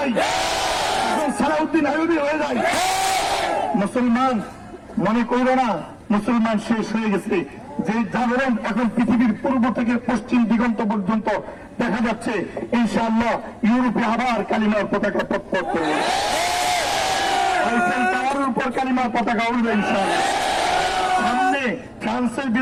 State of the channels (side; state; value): both; identical; correlation 1.00